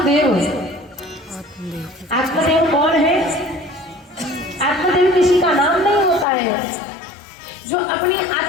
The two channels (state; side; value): drops out; right; at 6.2 s